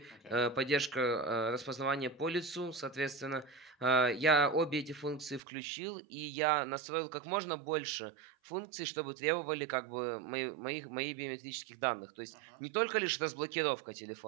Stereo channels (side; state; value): left; drops out; at 5.4 s